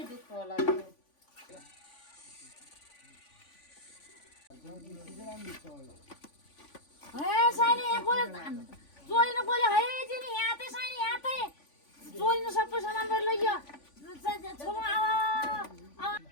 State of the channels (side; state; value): right; late; 3.5 ms